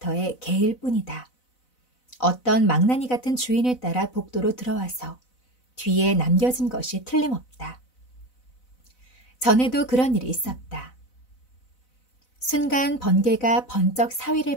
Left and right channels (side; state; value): right; late; 4.0 ms